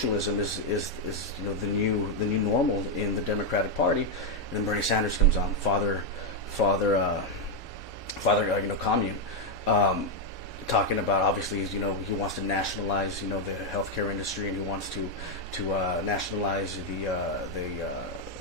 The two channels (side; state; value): both; normal; correlation 0.02